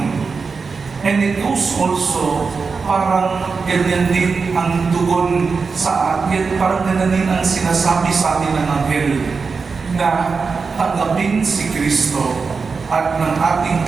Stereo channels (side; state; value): left; quieter; 4.9 dB